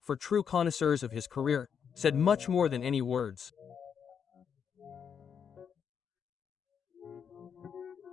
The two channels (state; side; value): quieter; right; 7.3 dB